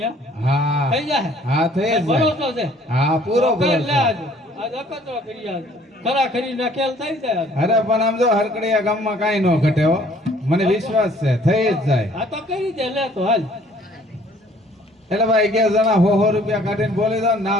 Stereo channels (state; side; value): normal; both; correlation 0.57